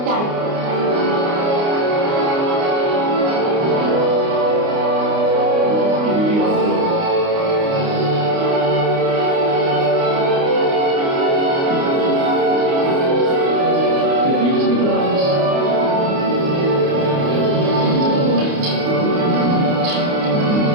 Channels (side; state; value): left; late; 29 ms